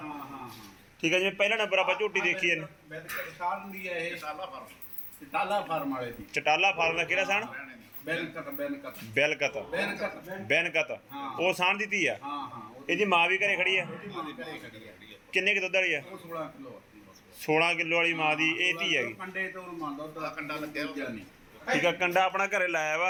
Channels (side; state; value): both; identical; correlation 1.00